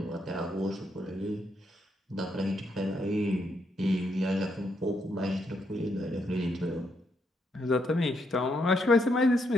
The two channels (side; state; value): both; normal; correlation 0.77